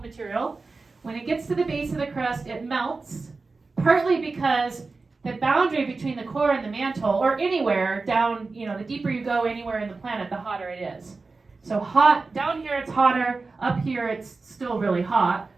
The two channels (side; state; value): left; quieter; 3.9 dB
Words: material. When it gets to the base of the crust, it melts, partly because the boundary between the core and the mantle, or anywhere down, the deeper you go anywhere in the planet, the hotter it is. So hot, down here it's hotter, up here it's still really hot,